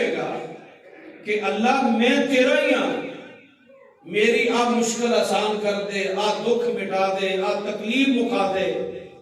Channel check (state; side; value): identical; both; correlation 1.00